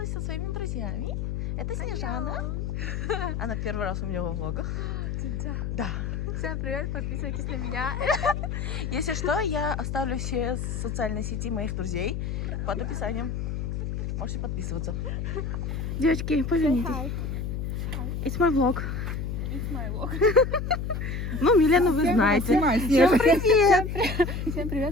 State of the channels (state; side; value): noise; left; hum, 3 dB below the sound